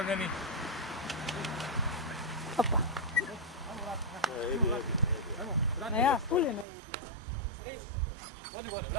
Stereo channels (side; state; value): left; drops out; at 6.7 s